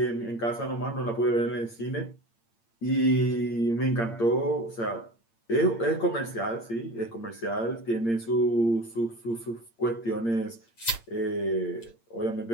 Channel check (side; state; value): right; late; 8.7 ms